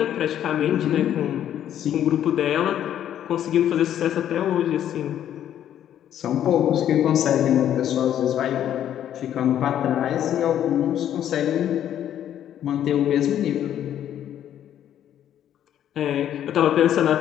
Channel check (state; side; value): quieter; right; 10.6 dB